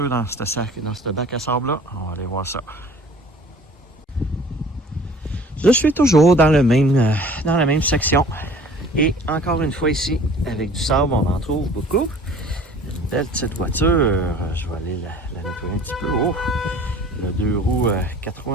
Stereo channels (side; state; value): both; normal; correlation 0.48